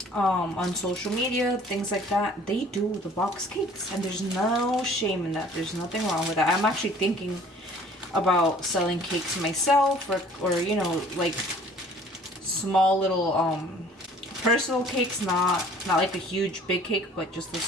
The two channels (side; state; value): both; normal; correlation 0.53